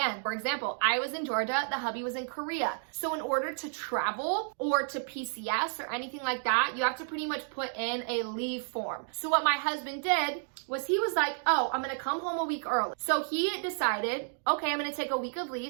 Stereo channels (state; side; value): silent; left; 57 dB below the other